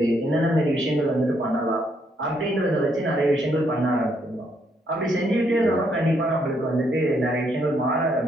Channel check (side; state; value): both; normal; correlation 0.73